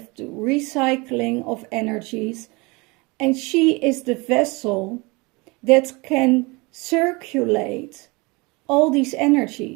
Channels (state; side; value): quieter; left; 26.1 dB